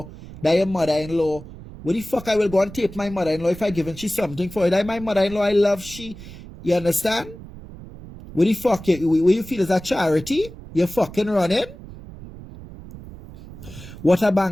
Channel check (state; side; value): noise; right; rumble, 15 dB below the sound